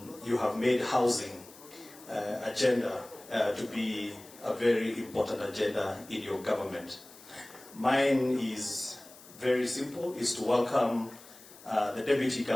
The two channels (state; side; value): noise; left; hiss, 21 dB below the sound